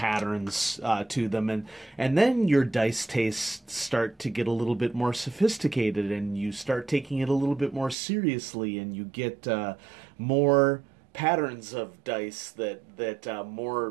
to them. And then your dice tastes start to get a little bit more sophisticated and you start taking it a little bit more seriously and you get more patterns of dice that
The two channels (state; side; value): drops out; left; at 8.0 s